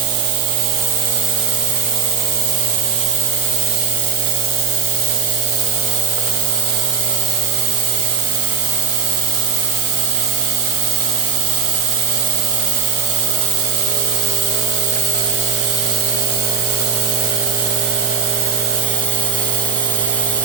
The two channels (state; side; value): quieter; left; 6.4 dB